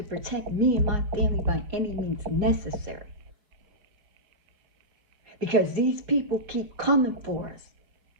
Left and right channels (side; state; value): left; late; 4.5 ms